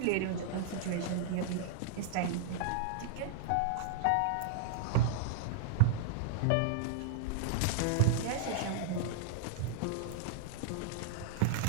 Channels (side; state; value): both; different; correlation -0.01